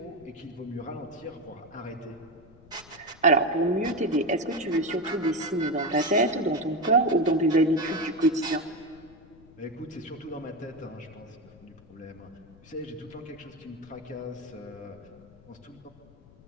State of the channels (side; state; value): left; noise; rumble, 24 dB below the sound